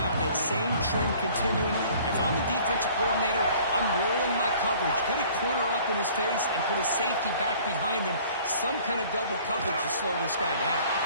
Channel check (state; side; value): inverted; both; correlation -0.52